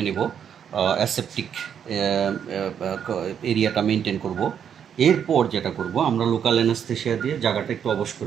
নেব, অ্যাসেপটিক এরিয়াটা মেনটেন করব। এরপর যেটা করব, আমরা লোকাল অ্যানাস্থেসিয়া দিয়ে জায়গাটা একটু অবশ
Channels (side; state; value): left; quieter; 8.3 dB